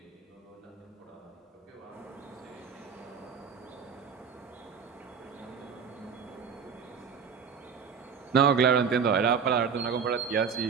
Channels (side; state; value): left; quieter; 6.5 dB